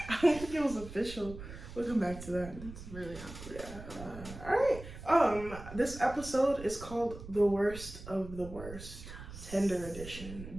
don't think it was official. We'll come back to that. That's really awkward. Yeah. Alright. This episode is called The Worst of the Worst. Tinder edition.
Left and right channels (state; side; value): noise; right; rumble, 13 dB below the sound